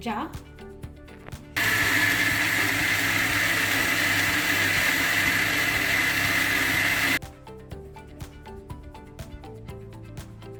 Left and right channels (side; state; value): both; identical; correlation 1.00